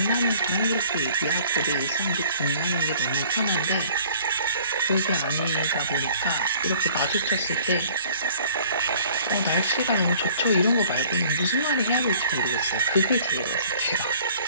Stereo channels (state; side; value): inverted; both; correlation -0.53